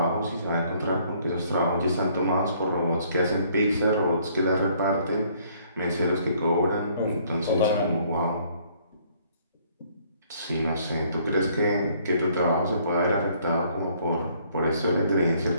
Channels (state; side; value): inverted; both; correlation -0.63